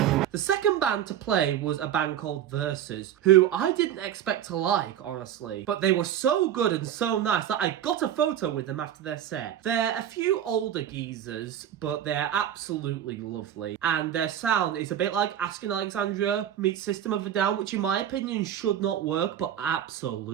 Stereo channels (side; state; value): left; quieter; 10.4 dB